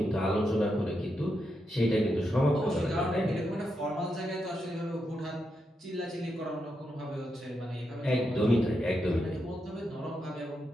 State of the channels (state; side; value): normal; both; correlation 0.84